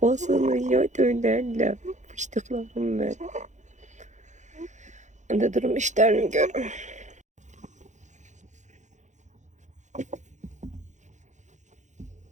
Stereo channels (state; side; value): late; left; 0.35 ms